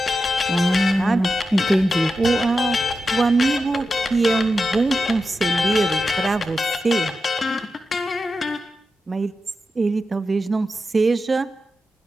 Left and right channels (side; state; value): both; normal; correlation 0.90